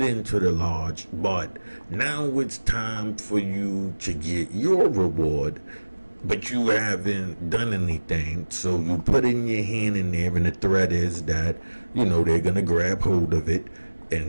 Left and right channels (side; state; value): both; inverted; correlation -1.00